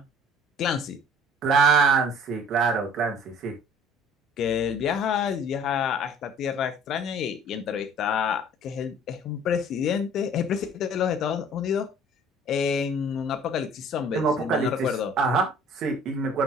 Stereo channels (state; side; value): normal; both; correlation 0.51